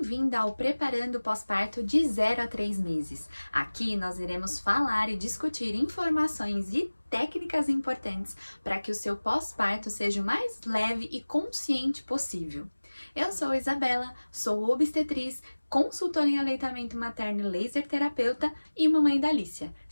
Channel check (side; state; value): both; inverted; correlation -1.00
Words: ao Preparando o Pós-Parto de 0 a 3 meses. Aqui nós iremos falar e discutir informações e técnicas importantes para que o seu pós-parto seja o mais leve e consciente possível. Eu sou Isabela, sou obstetriz, consultora em aleitamento materno e laser terapeuta e mamãe da Alicia.